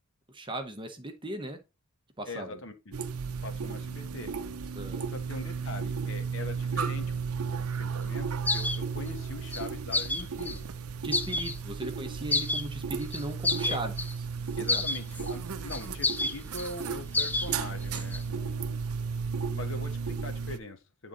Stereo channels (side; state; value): both; normal; correlation 0.13